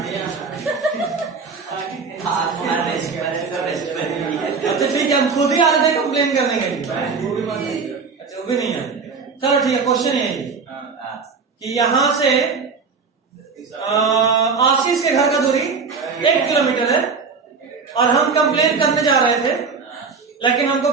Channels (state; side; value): quieter; left; 5.0 dB